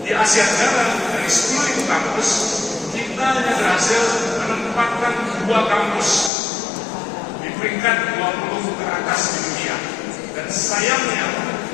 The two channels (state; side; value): drops out; right; at 6.3 s